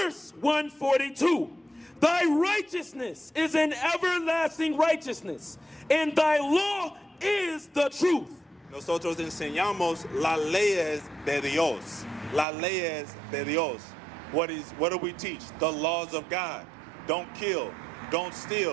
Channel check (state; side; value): drops out; left; at 12.5 s